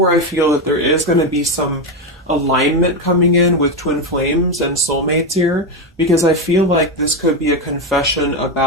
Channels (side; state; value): both; normal; correlation 0.10